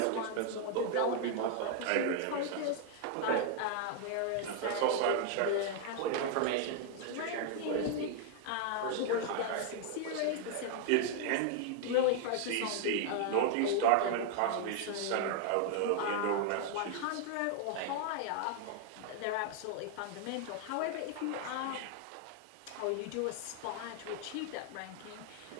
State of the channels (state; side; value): different; both; correlation 0.00